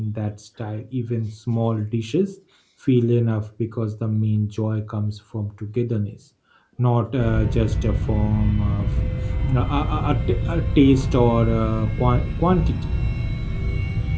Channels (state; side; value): identical; both; correlation 1.00